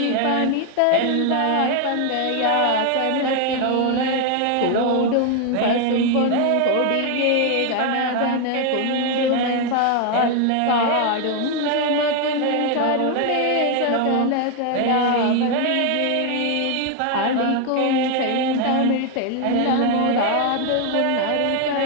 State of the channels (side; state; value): both; different; correlation 0.01